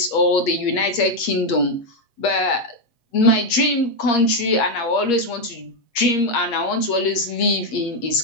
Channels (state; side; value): late; right; 8.4 ms